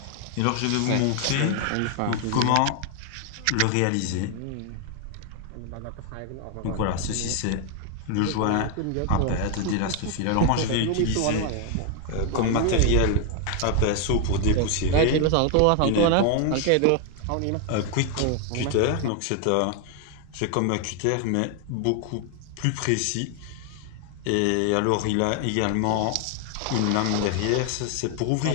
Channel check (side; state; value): both; different; correlation 0.00